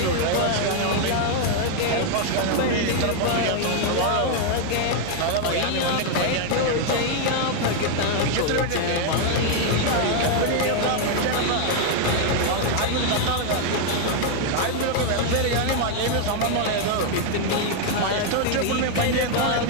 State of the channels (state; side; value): different; both; correlation 0.00